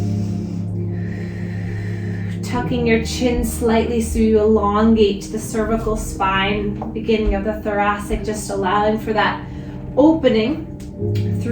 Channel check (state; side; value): identical; both; correlation 1.00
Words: Tucking your chin slightly so you elongate the cervical spine, beginning of the thoracic, just allowing for that opening